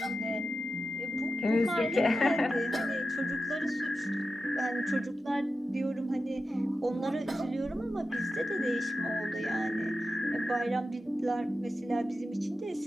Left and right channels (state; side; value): normal; both; correlation 0.90